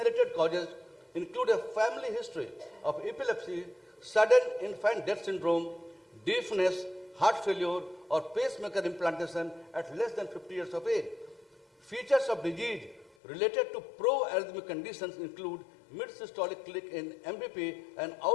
causes include a family history of epilepsy, sudden infant death syndrome, deafness, heart failure, or pacemaker implantation at less than 50 years of age. Features of disease related to pro-arrhythmic conditions include mid-systolic click in MVP and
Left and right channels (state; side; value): drops out; right; at 13.1 s